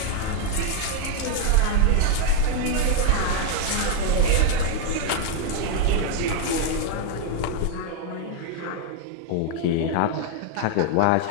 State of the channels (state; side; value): different; both; correlation 0.00